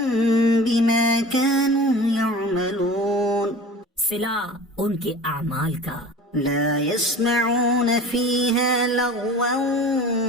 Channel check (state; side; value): normal; both; correlation 0.39